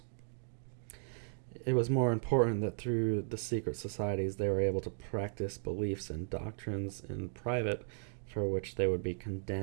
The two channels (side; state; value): left; silent; digital silence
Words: It was more important that through the secret societies they were able to practice beliefs and doctrines in private, for which they would be